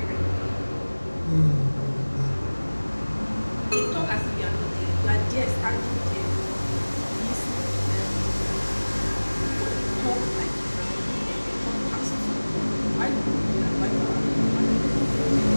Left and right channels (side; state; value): both; inverted; correlation -1.00